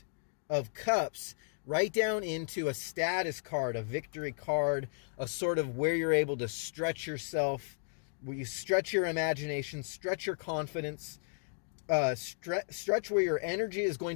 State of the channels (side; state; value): right; silent; digital silence